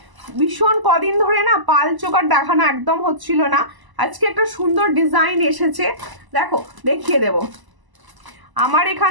ভীষণ কদিন ধরে না পাল চোকার দেখানো একদম হচ্ছিল না, আজকে একটা সুন্দর ডিজাইন এসেছে, দেখো দেখিয়ে দেব। আমার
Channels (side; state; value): left; late; 1.0 ms